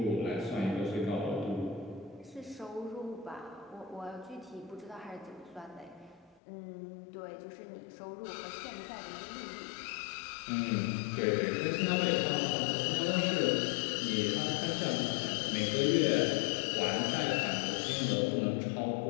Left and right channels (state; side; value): drops out; right; at 6.4 s